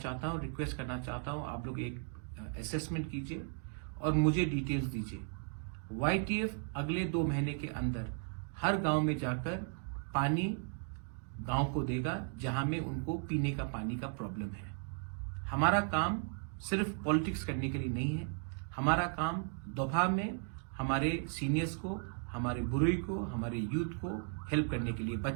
हूं, रिक्वेस्ट करना चाहता हूं, आप लोग एक असेसमेंट कीजिए और मुझे डिटेल्स दीजिए। YTF अगले 2 महीने के अंदर हर गांव में जाकर पानी गांव को देगा जहां में उनको पीने का पानी का प्रॉब्लम है। हमारा काम सिर्फ पॉलिटिक्स करने के लिए नहीं है, हमारा काम दोपहर में हमारे सीनियर्स को, हमारे बुजुर्ग को, हमारे यूथ को हेल्प करने के लिए,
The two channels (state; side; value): silent; left; 54 dB below the other